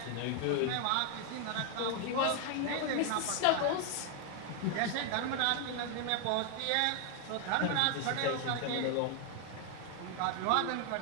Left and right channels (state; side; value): different; both; correlation 0.01